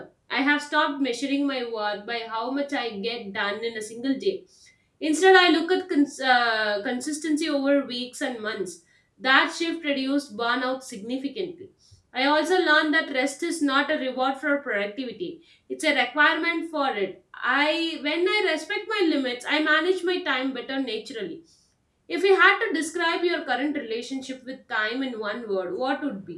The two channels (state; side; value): identical; both; correlation 1.00